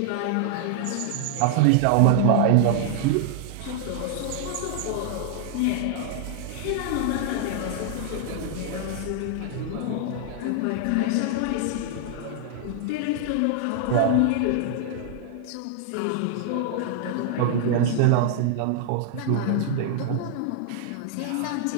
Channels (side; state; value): both; different; correlation 0.00